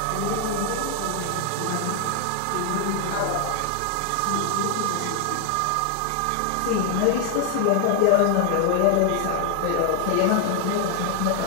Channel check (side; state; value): both; different; correlation 0.00